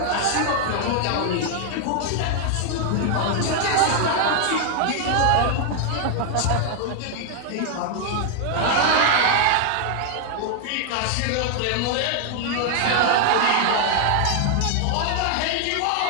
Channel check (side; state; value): both; different; correlation 0.00